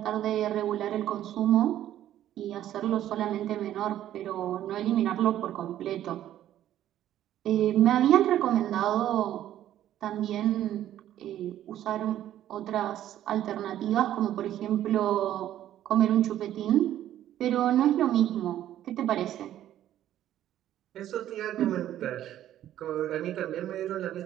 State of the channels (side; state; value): left; quieter; 12.1 dB